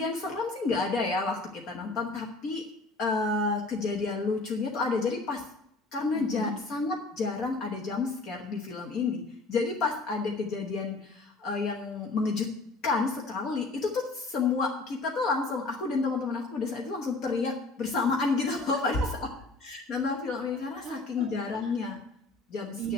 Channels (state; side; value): quieter; right; 3.4 dB